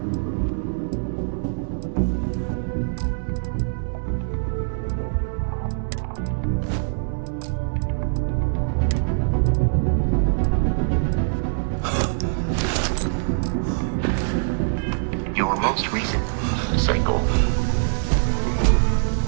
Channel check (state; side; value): silent; left; 63 dB below the other